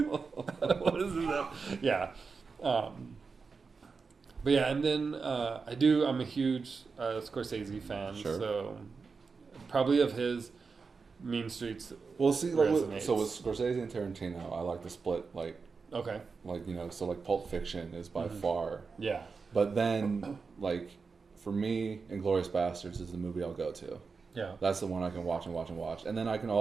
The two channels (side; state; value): left; quieter; 4.8 dB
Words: What is that? Yeah. But yeah, and then I'm a huge Scorsese fan, sure. So probably of his Mean Streets. Well, see, like, so with Scorsese and Tarantino, I like the split, like, okay, like, you know, so like Pulp Fiction is by far, yeah. But then, like, for me, Inglourious Bastards is the movie I'll go to. Yeah, that's the one I can watch and watch and watch, and then I can